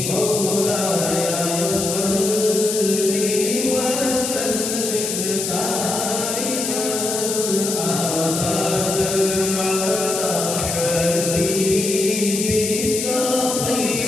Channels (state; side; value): noise; left; hiss, 3 dB below the sound